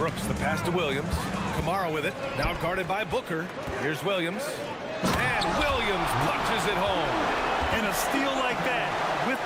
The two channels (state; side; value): identical; both; correlation 1.00